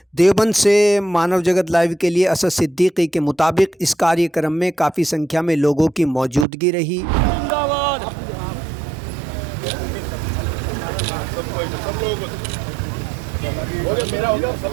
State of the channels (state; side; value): drops out; left; at 6.5 s